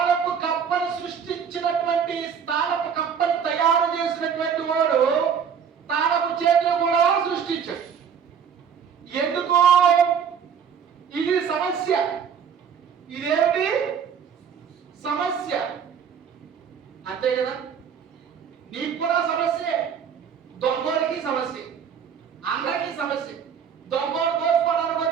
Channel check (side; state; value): left; quieter; 7.4 dB